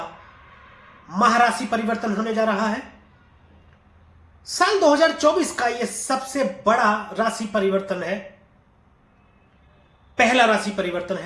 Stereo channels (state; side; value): identical; both; correlation 1.00